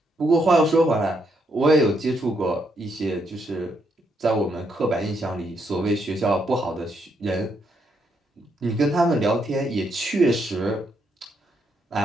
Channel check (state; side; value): normal; both; correlation 0.76